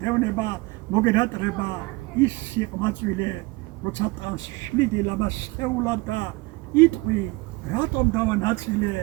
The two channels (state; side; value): quieter; left; 23.5 dB